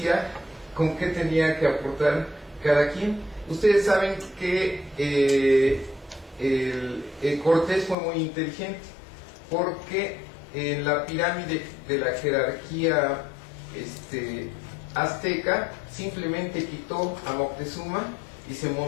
con qué tenía que aportar cada quien. Ustedes saben que Cortés fue muy inteligente, porque en la pirámide de la jerarquía azteca, simplemente quitó a Moctezuma y se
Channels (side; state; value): right; drops out; at 8.0 s